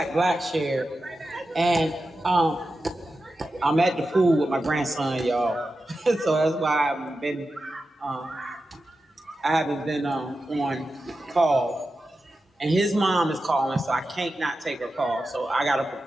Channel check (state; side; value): normal; both; correlation 0.91